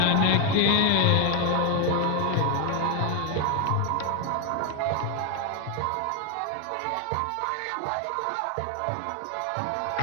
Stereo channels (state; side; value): different; both; correlation 0.01